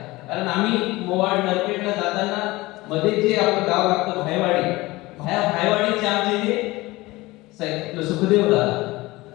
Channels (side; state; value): right; quieter; 20.5 dB